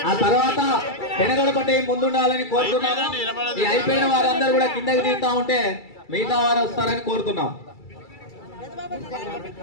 ఆ తర్వాత పెనగొడపట్టి ముందుండాలని కోరుతున్నాము. ఈ అయిపోయిన వారందరూ కూడా కిందకి దిగుతా ఉంటే మిగతా వారు వస్తారని కోరుతున్నాం.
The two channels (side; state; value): right; late; 2.3 ms